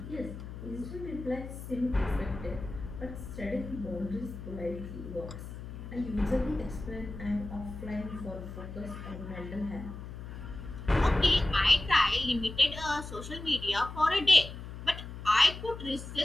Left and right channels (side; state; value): left; noise; hum, 10 dB below the sound